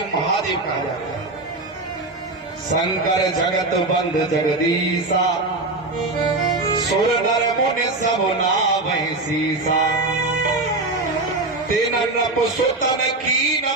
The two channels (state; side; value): quieter; left; 3.1 dB